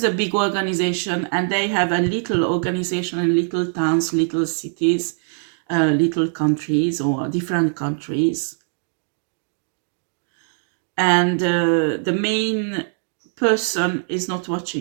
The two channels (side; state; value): left; silent; digital silence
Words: a big organization, and they have a little organization in little towns, little cities, little countries, or different countries. And the main person is not